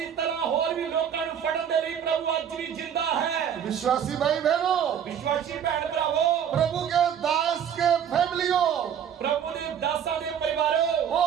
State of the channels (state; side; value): quieter; left; 8.6 dB